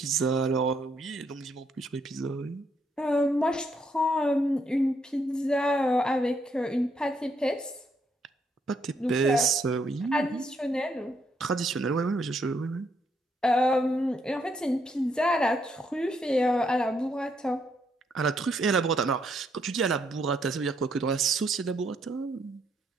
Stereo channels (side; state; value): both; normal; correlation 0.74